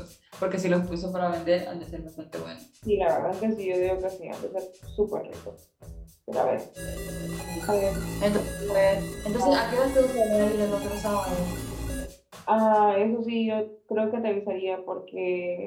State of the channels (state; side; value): identical; both; correlation 1.00